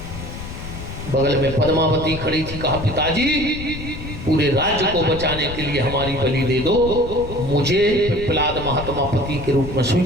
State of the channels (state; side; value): noise; left; rumble, 9 dB below the sound